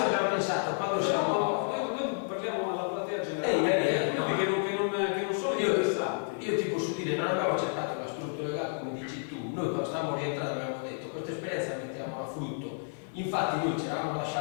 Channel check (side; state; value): right; silent; 57 dB below the other